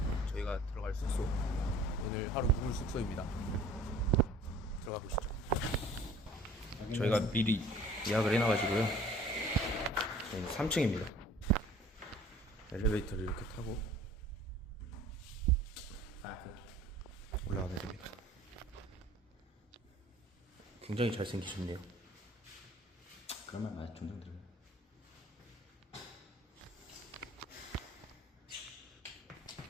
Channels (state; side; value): normal; both; correlation 0.50